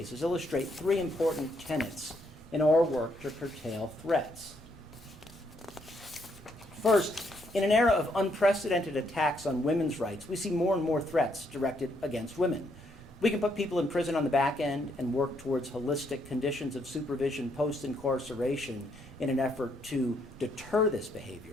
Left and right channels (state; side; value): normal; both; correlation 0.73